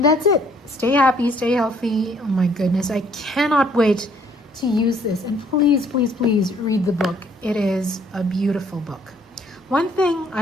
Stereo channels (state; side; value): normal; both; correlation 0.63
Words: that's it. Stay happy, stay healthy. Oh my goodness, I cannot wait to use this. And please, please, please read the book. It is a beautiful book. One thing